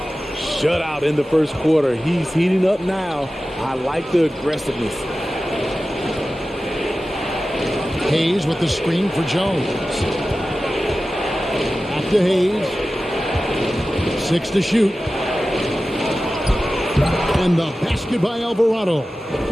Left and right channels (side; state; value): both; normal; correlation 0.95